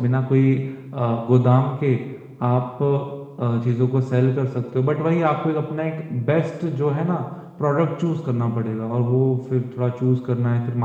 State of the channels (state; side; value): identical; both; correlation 1.00